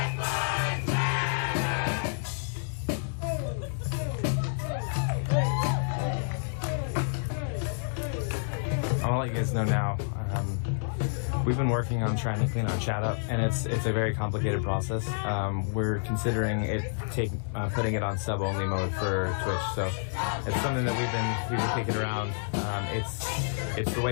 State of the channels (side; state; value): right; silent; 59 dB below the other